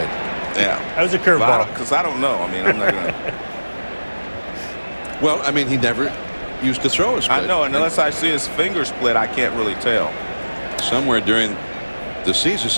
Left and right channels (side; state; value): both; inverted; correlation -1.00